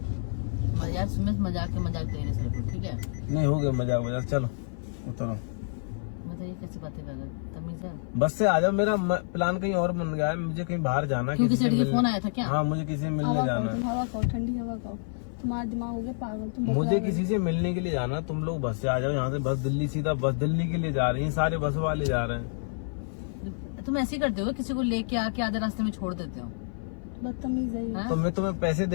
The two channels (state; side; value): silent; right; 56 dB below the other